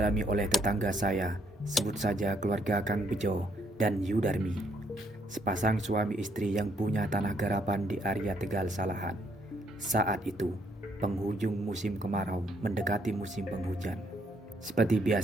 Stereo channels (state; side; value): normal; both; correlation 0.70